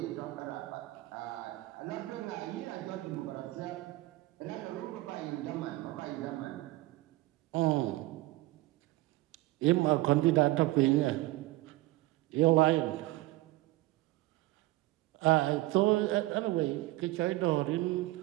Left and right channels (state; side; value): quieter; left; 18.9 dB